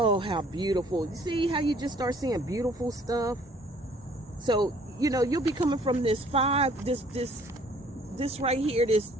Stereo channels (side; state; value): both; normal; correlation 0.58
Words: how beautiful. You see how you just start seeing beautiful stuff? So, you know, you'll be coming from this right here, this,